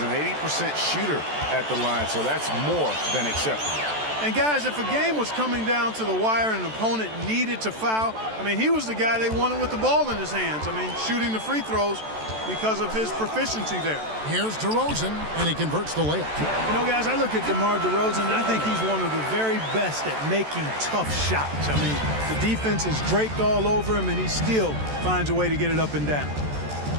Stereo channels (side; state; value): left; late; 14 ms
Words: an 80% shooter at the line, so that's more than acceptable. And guys, if a game was coming down to the wire and an opponent needed to foul, I mean, he was the guy they wanted with the ball in his hands. I mean, shooting the free throws because of his proficiency there. Here's DeRozan, and he converts the layup. You know, guys, I look at DeMar DeRozan, and I think he's one of the very best at making tough shots. I mean, the defense is draped all over him, and he still finds a way to get it up and down.